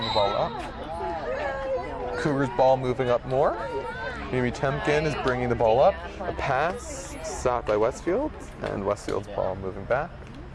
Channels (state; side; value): identical; both; correlation 1.00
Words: the ball up. Cougars ball moving up more. Mimi Temkin is bringing the ball up. A pass, stopped by Westfield, and Westfield's ball moving back.